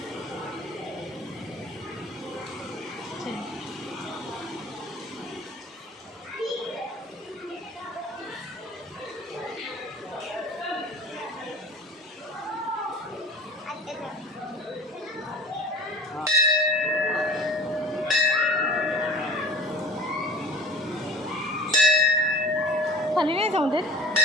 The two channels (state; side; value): normal; both; correlation 0.42